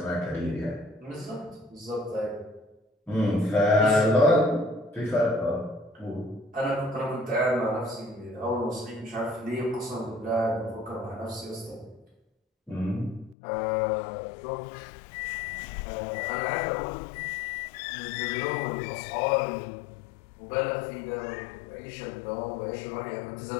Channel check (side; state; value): right; drops out; at 13.4 s